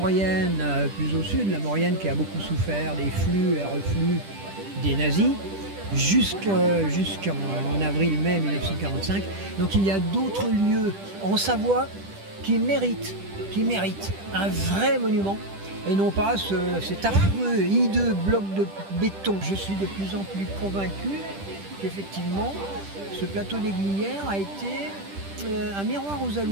plus au sud, la Maurienne qui a beaucoup souffert des flux et reflux des nazis, jusqu'en avril-mai 1945. Donc il y a d'autres lieux en Savoie qui méritent un vrai monument et non pas cet affreux, hideux bloc de béton. Je suis de plus en plus convaincu qu'effectivement ce plateau des Glières a été un miroir aux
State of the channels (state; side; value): late; left; 10 ms